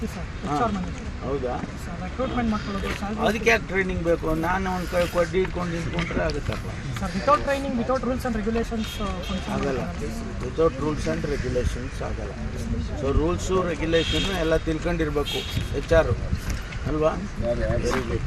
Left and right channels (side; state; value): both; identical; correlation 1.00